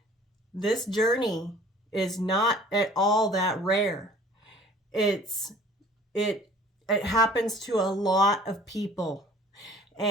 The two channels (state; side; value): normal; both; correlation 0.50